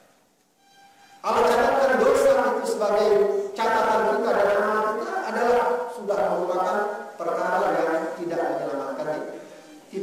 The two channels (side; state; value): both; identical; correlation 1.00